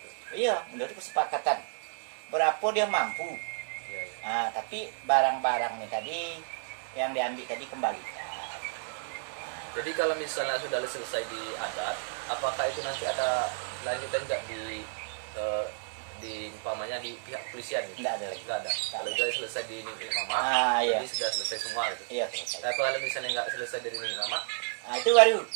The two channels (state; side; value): silent; left; digital silence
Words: Iya, menurut kesepakatan. Berapa dia mampu. Iya, iya. Nah, tapi barang-barang ini tadi yang diambil tadi kembalikan. Jadi kalau misalnya sudah selesai di adat, apakah itu nanti ada lanjutan nggak di umpamanya di pihak kepolisian gitu? Tidak ada lagi. Nggak ada. Kalau sudah selesai di Nini Mama, Iya. jadi sudah selesai semua gitu. Iya, selesai. Tapi kalau misalnya nggak selesai dari Nini Mama, Nah, itu baru